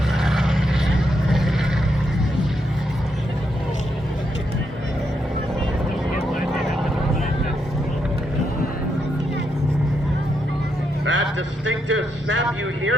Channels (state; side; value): normal; both; correlation 0.80